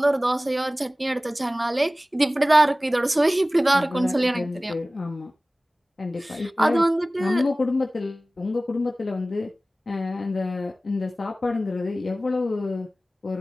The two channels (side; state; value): both; normal; correlation 0.97